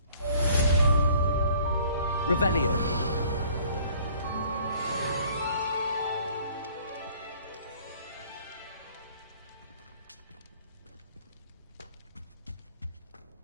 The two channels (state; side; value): inverted; both; correlation -0.55